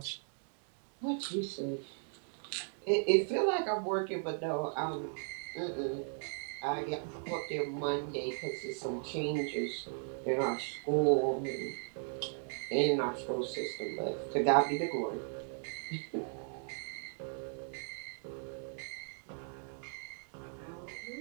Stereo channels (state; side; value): silent; left; 53 dB below the other